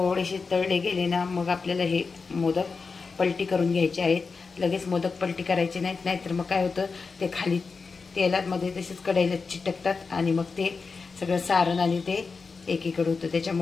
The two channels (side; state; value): right; quieter; 4.7 dB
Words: तळले गेले ना मग आपल्याला हे मोदक पलटी करून घ्यायचे आहेत. लगेच मोदक पलटी करायचे नाहीत, नाहीतर मग काय होतं ते खाली तेलामध्ये तसेच कढईला चिटकतात आणि मग ते सगळं सारण आणि ते एकीकडे होतं.